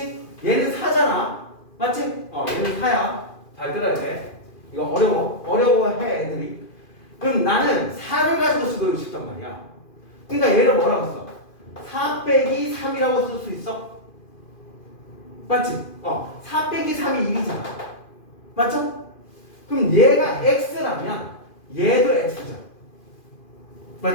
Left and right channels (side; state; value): right; late; 2.4 ms